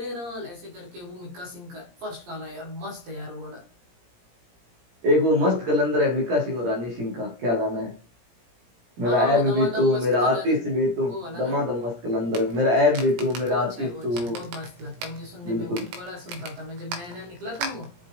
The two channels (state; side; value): late; left; 17 ms